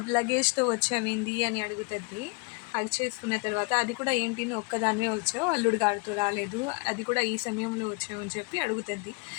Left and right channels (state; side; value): quieter; right; 29.5 dB